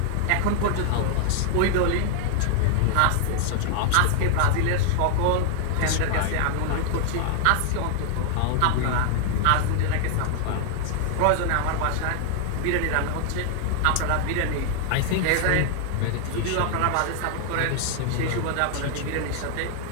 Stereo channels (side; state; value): both; different; correlation 0.00